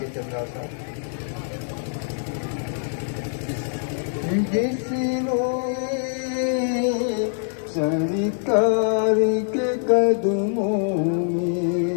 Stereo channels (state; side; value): silent; right; digital silence